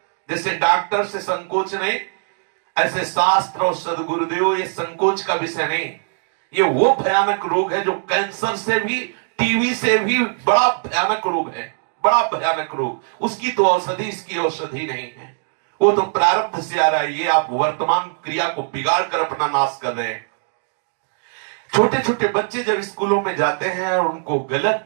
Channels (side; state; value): left; silent; digital silence